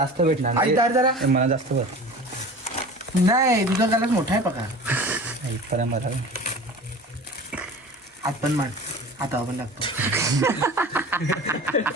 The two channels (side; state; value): both; normal; correlation 0.38